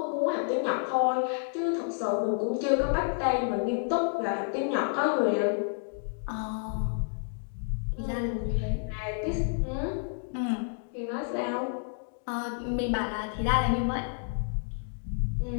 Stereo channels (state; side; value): silent; right; digital silence